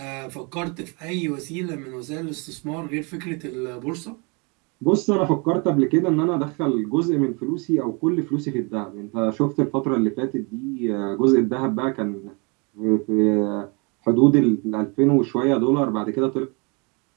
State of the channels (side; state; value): left; quieter; 31.6 dB